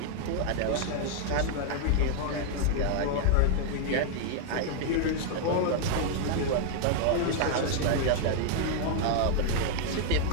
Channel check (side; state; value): both; different; correlation 0.00